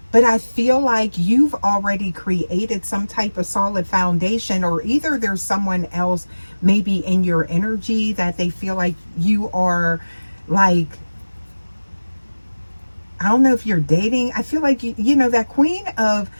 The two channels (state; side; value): inverted; both; correlation -1.00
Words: But I feel like you've already created some type of solid foundation, or either there's someone else maybe in your energy that they feel like you are like, I don't know if you're dating. I feel like, you know, that queen of